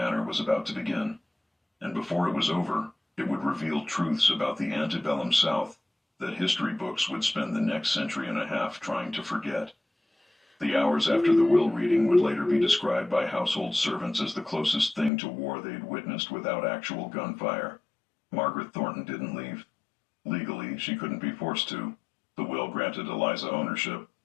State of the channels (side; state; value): right; drops out; at 15.1 s